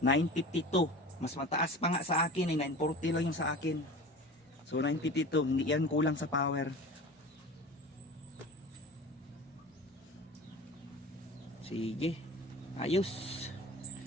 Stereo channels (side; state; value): both; normal; correlation 0.36